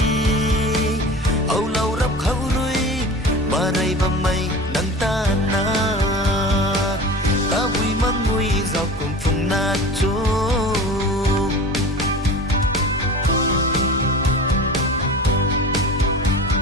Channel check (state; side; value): normal; both; correlation 0.35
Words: âu lâu rắp khâu rui mà đây mà mây nắng ta na ta vui mang vui dọc cùng phùng na chô